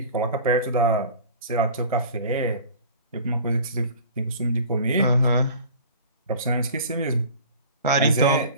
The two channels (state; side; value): inverted; both; correlation -0.42